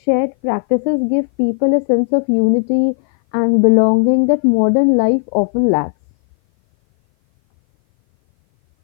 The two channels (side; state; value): right; silent; 58 dB below the other